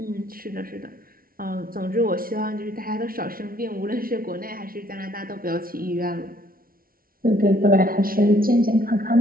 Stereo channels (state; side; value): late; left; 0.43 ms